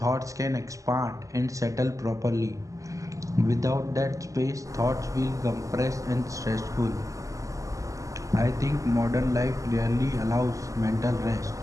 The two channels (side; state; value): left; late; 0.16 ms